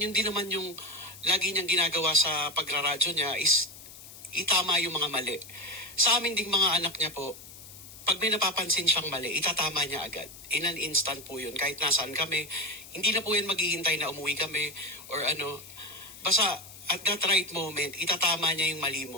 din naman yung lagi niyang ginagawa sa pagraradyo niya is itama yung mga mali. Sa amin ding mga anak niya po, pag may napapansin siyang mali, itatama niya agad. In an instant po yun. Kahit nasaan kami, hindi na po yan maghihintay na umuwi kami or ano. Basta at that right moment, itatama niya yung mali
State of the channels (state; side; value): noise; left; hiss, 16 dB below the sound